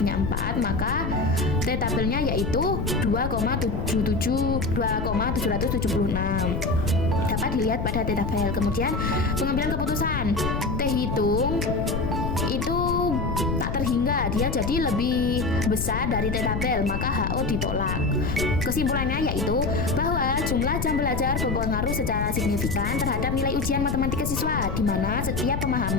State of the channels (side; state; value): left; noise; rumble, 2 dB below the sound